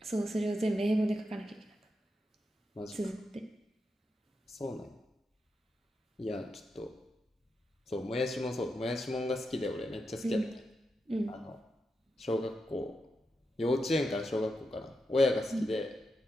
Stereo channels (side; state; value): both; normal; correlation 0.86